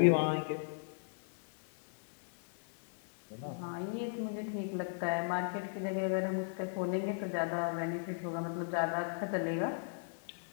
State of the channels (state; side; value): silent; right; digital silence